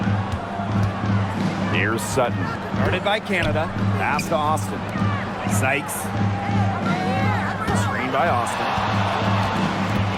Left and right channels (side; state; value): both; identical; correlation 1.00